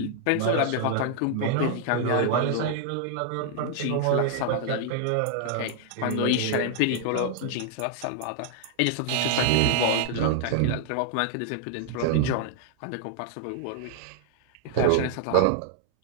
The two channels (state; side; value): different; both; correlation 0.00